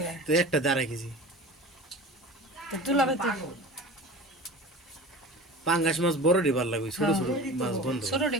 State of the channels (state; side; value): normal; both; correlation 0.36